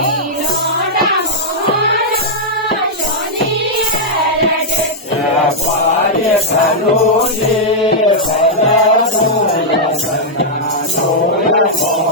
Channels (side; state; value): both; normal; correlation -0.06